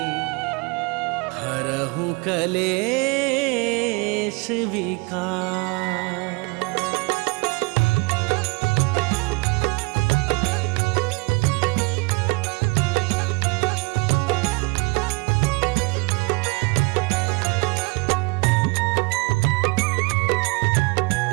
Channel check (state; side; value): quieter; left; 28.8 dB